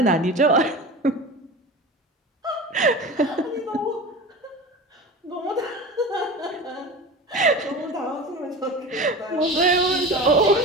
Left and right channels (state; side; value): normal; both; correlation 0.31